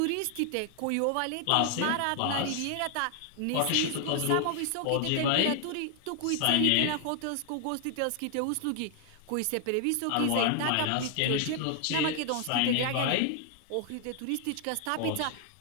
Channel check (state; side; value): different; both; correlation 0.00